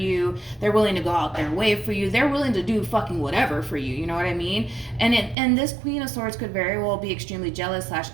They're willing to go out their way for you. They're willing to do fucking whatever for you. You know what I mean? And this Queen of Swords could very well be extremely jealous /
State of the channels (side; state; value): left; drops out; at 5.4 s